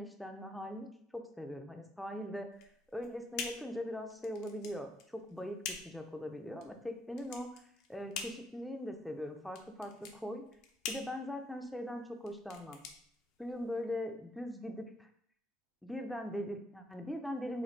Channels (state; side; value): normal; both; correlation 0.74